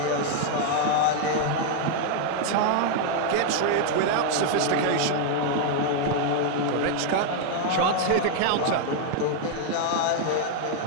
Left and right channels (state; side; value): different; both; correlation 0.00